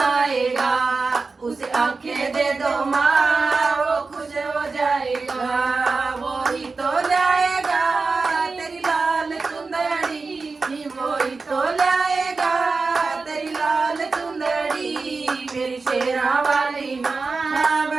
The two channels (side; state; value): left; quieter; 4.1 dB